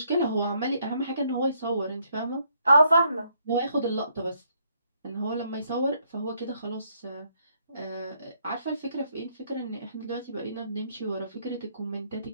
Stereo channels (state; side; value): inverted; both; correlation -0.71